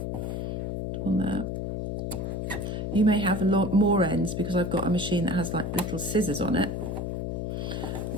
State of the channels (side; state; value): left; noise; hum, 2 dB below the sound